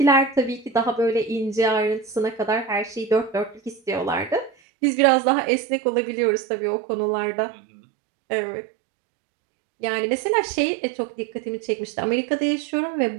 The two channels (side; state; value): left; drops out; at 4.5 s